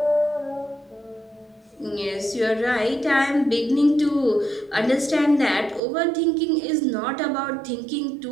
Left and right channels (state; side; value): drops out; left; at 5.8 s